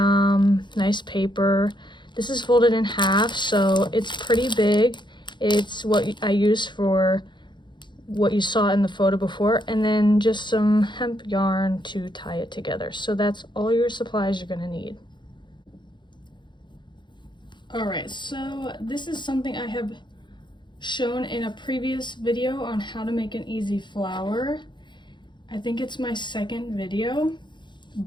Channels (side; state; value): right; late; 0.22 ms